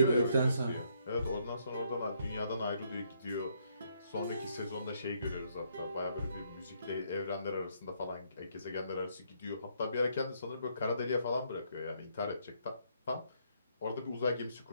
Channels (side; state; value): both; inverted; correlation -0.71